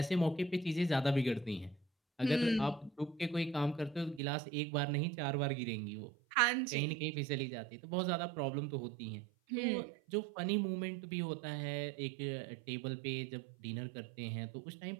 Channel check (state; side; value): drops out; left; at 4.2 s